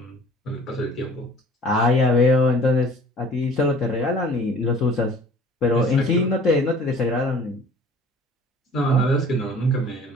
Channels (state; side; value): normal; both; correlation 0.49